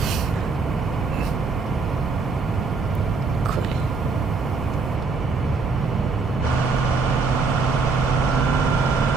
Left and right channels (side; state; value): left; quieter; 4.3 dB